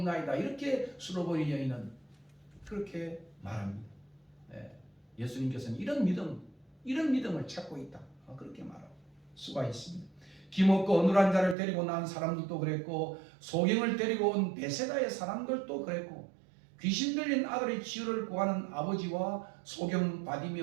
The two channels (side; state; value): left; drops out; at 11.6 s